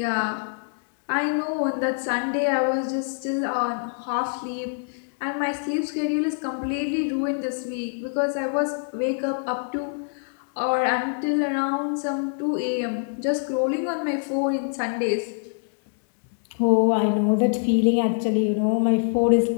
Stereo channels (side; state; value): right; silent; 62 dB below the other